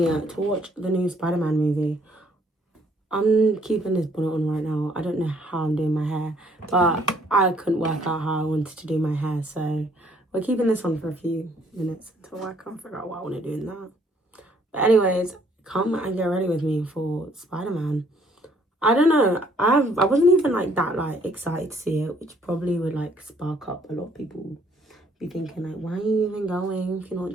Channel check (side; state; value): both; normal; correlation 0.64